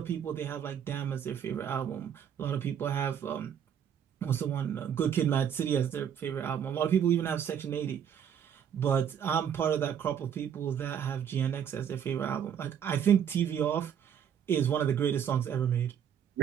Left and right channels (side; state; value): left; quieter; 8.6 dB